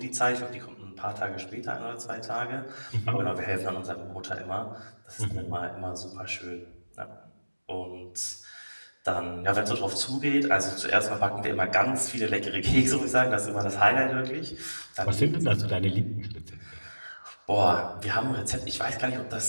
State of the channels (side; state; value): both; inverted; correlation -1.00